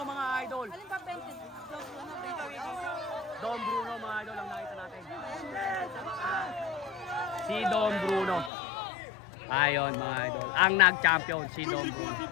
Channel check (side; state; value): right; drops out; at 8.5 s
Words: Mga idol. Alin ba painted? Dom Bruno mga idol ang nakita natin. Si Dom Bruno. Ayon mga idol. Ang nag-champion si Dom